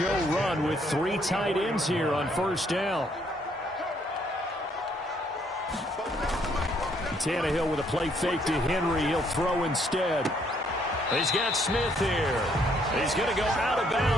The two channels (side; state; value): both; normal; correlation 0.68